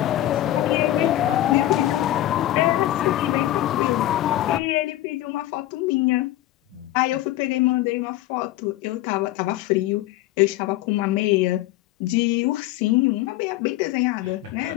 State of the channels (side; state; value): right; quieter; 14.9 dB